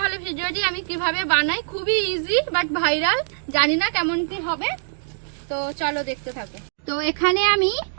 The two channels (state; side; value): silent; left; digital silence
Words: ভিডিওটি আমি কিভাবে বানাই। খুবই ইজি বাট ভাইরাল, জানি না কেমন কি হবে, তো চলো দেখতে থাকো। তো এখানে আমি